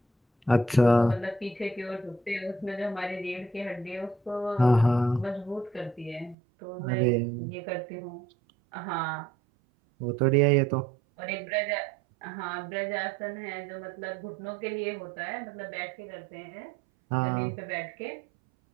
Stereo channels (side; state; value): left; drops out; at 6.4 s